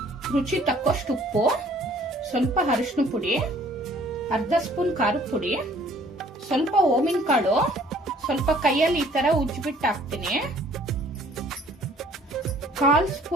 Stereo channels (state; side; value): normal; both; correlation 0.57